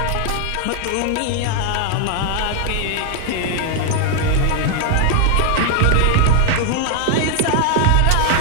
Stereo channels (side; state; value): both; different; correlation 0.00